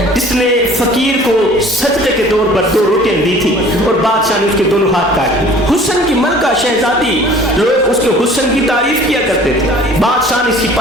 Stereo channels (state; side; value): normal; both; correlation 0.49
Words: جس نے فقیر کو صدقے کے طور پر 2 روٹیاں دی تھی اور بادشاہ نے اس کے دونوں ہاتھ کاٹ دیے. حسن کی ملکہ شہزادی, لوگ اس کے حسن کی تعریف کیا کرتے تھے. بادشاہ نے